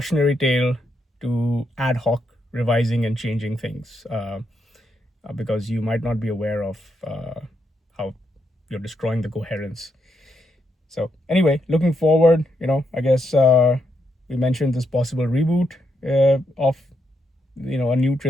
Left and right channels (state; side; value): normal; both; correlation 0.80